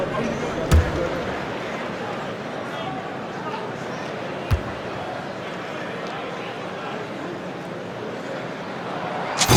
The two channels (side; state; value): both; identical; correlation 1.00